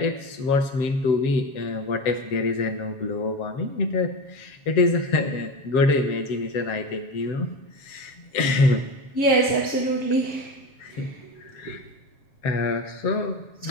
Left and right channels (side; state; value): right; late; 7.3 ms